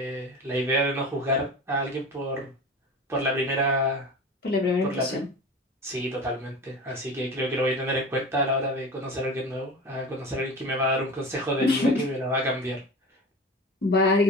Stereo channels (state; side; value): normal; both; correlation 0.32